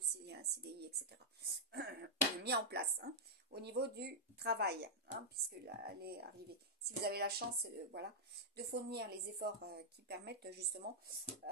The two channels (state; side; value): normal; both; correlation -0.07